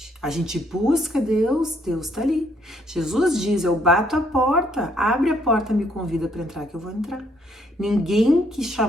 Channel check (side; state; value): both; normal; correlation 0.69